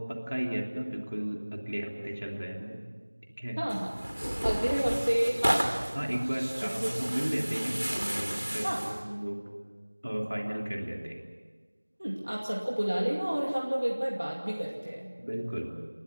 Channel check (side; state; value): both; inverted; correlation -1.00